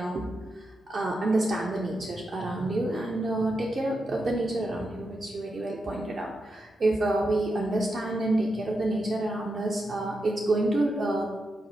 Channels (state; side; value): normal; both; correlation 0.86